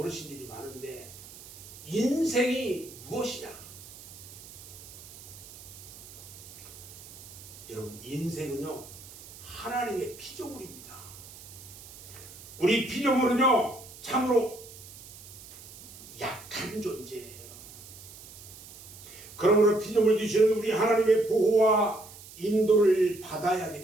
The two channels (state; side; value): noise; right; hiss, 17 dB below the sound